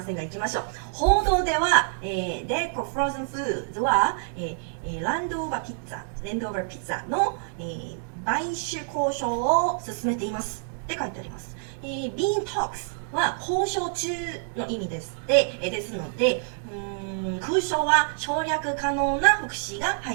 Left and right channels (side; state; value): left; silent; digital silence